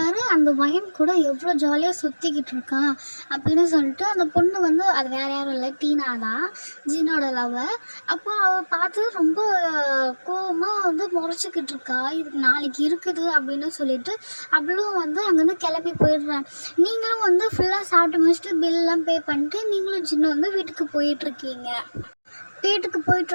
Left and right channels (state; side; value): inverted; both; correlation -1.00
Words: அந்த வயன் கூட எவ்வளோ ஜாலியாக சுற்றிக்கிட்டு இருக்கான் அப்படின்னு சொல்லிட்டு அந்த பொண்ணு வந்து அது வேறு யாரும் இல்லை, டீனா தான், ஜின்னோட லவ்வர். அப்போ அவள் பார்த்து ரொம்ப கோவமாக வந்து முறைச்சிக்கிட்டு இருக்கா. இது நாளைக்கு இருக்குது அப்படின்னு சொல்லிட்டு அவளும் வந்து அங்கேருந்து கிளம்பி போயிடுறான். நீங்களும் வந்து ஃபுல்லாக சாப்பிட்டு முடிச்சுட்டு பில்லாம் பே பண்ணிட்டு நீங்களும் ஜின்னு வந்து வீட்டுக்கு போயிட்டுருக்கீங்க. வீட்டுக்கு